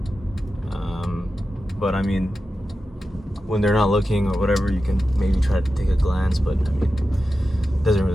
but I mean, when they're not looking or whatever, you can maybe try to take a glance, but I mean, it doesn't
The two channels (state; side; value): normal; both; correlation 0.92